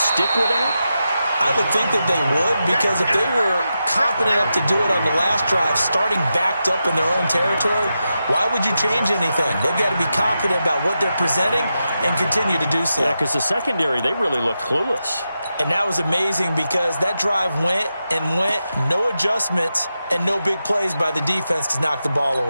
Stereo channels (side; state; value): both; inverted; correlation -0.89